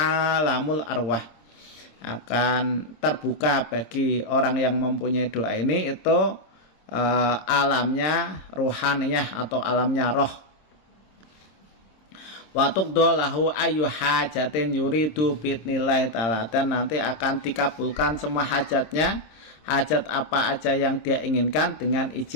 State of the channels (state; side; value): late; right; 26 ms